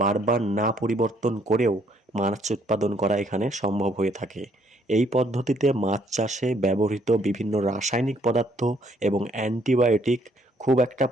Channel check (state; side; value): normal; both; correlation 0.67